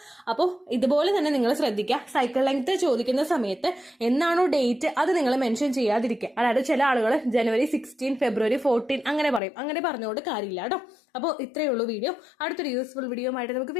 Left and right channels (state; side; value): drops out; right; at 9.4 s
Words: അപ്പോൾ ഇതുപോലെ തന്നെ നിങ്ങൾ ശ്രദ്ധിക്കുക, സൈക്കിൾ ലെങ്ത് ചോദിക്കുന്ന സമയത്ത് എന്നാണോ ഡേറ്റ് അത് നിങ്ങൾ മെൻഷൻ ചെയ്യാതിരിക്കുക. അതായത് ചില ആളുകൾ ജനുവരി 16, ഫെബ്രുവരി 14 അങ്ങനെ പറയും. അങ്ങനെ പറഞ്ഞുകൊണ്ട് കാര്യമില്ല കേട്ടോ. അപ്പോൾ ഇത്രയേ ഉള്ളൂ വീഡിയോ. അടുത്തൊരു യൂസ്ഫുൾ വീഡിയോ ആയിട്ട് നമുക്ക്